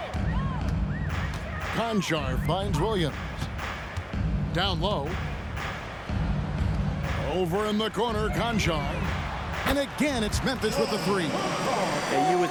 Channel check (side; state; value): both; identical; correlation 1.00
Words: Kennard finds Williams. Down low. Over in the corner, Kennard. And again, it's Memphis with the 3. Yeah, you would